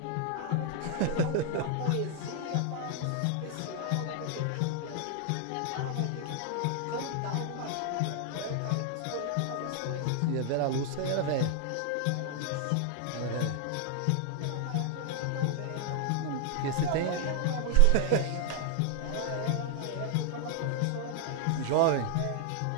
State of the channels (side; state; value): both; different; correlation 0.00